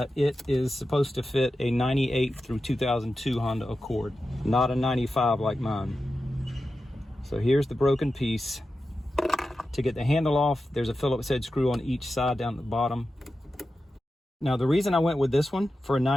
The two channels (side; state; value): both; normal; correlation 0.92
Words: it is supposed to fit a 98 through 2002 Honda Accord, not a 95 like mine. So here's the broken piece. To get the handle off, there's a Phillips head screw on each side down at the bottom. Now the reason I went with this one for a